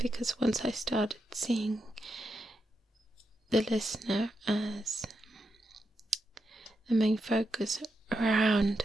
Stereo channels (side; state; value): both; normal; correlation 0.85